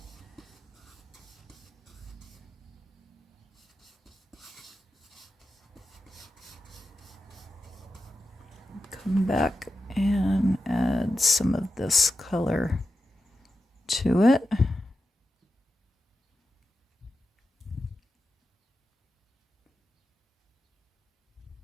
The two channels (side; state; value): both; normal; correlation 0.90